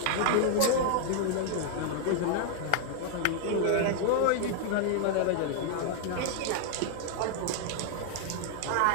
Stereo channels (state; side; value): different; both; correlation -0.01